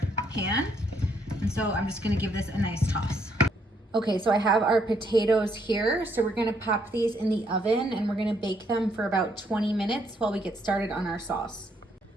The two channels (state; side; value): normal; both; correlation 0.72